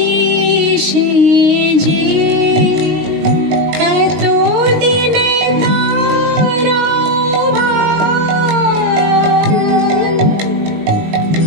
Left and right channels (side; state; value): left; late; 20 ms